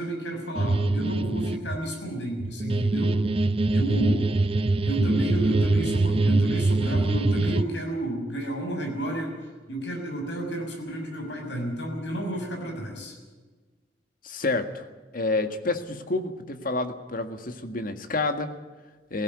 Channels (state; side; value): normal; both; correlation 0.73